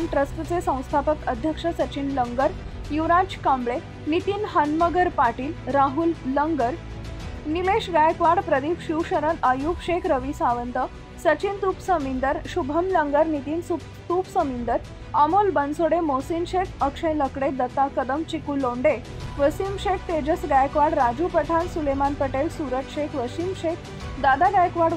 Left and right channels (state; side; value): identical; both; correlation 1.00